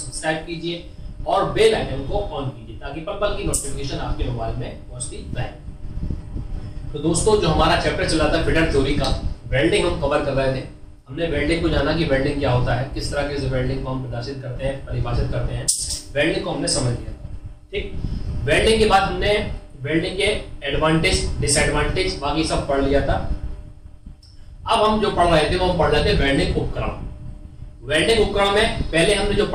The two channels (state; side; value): identical; both; correlation 1.00